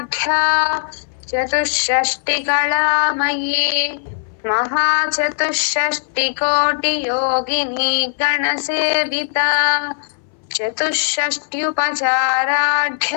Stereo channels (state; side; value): silent; right; 62 dB below the other